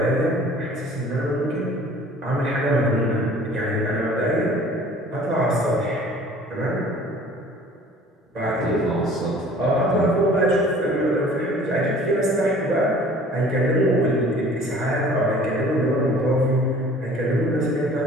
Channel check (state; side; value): normal; both; correlation 0.49